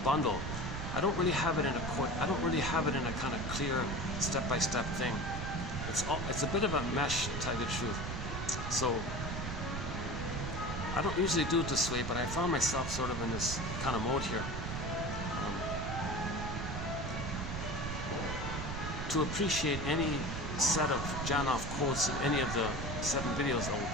bundle. I don't really have it in a quote. I don't really have it in a kind of clear step-by-step thing. It's a bit of a mesh, to tell you the truth. So I don't usually do it this way, but I found myself sort of in this kind of mode here. To appreciate any set of Janov quotes in any of the 7 videos I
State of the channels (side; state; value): right; noise; rumble, 5 dB below the sound